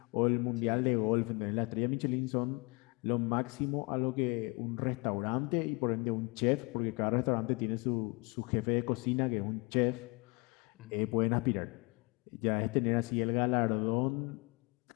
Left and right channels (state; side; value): quieter; right; 28.8 dB